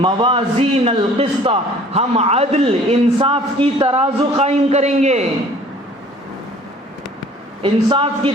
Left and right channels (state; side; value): normal; both; correlation 0.51